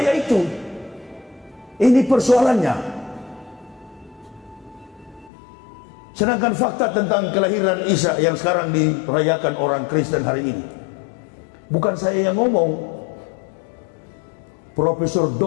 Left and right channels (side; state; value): right; drops out; at 5.3 s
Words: itu. Ini persoalannya. Sedangkan fakta tentang kelahiran Isa yang sekarang dirayakan orang Kristen hari ini, bukan saya yang ngomong, Profesor